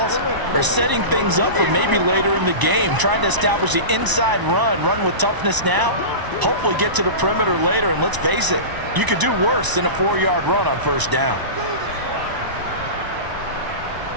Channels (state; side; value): late; left; 1.0 ms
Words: are setting things up for maybe later in the game, trying to establish the inside run with toughness now, hopefully get to the perimeter later, and let's face it, you could do worse than a 4-yard run on 1st down.